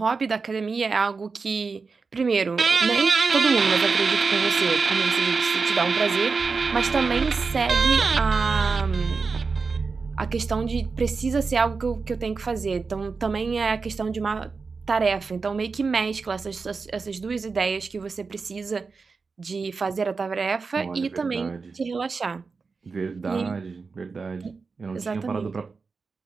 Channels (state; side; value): quieter; left; 4.6 dB